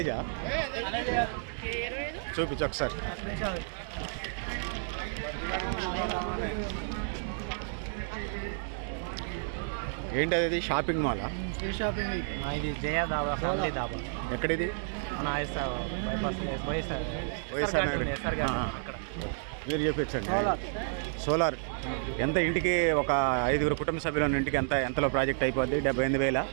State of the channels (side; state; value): left; silent; digital silence